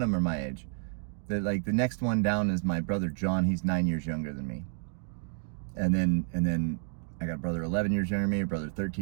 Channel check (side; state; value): left; silent; digital silence